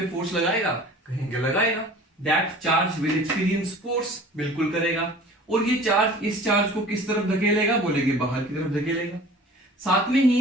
फोर्स लगाएगा? कहेंगे लगाएगा। That charge will experience force, बिल्कुल करेगा। और ये चार्ज इस चार्ज को किस तरफ धकेलेगा? बोलेंगे बाहर की तरफ धकेलेगा। साथ में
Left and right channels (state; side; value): normal; both; correlation 0.44